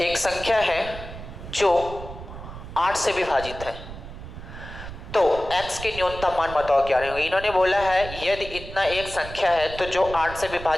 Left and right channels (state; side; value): noise; right; rumble, 12 dB below the sound